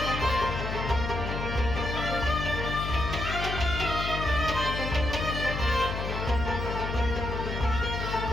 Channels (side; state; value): left; noise; hum, 3 dB below the sound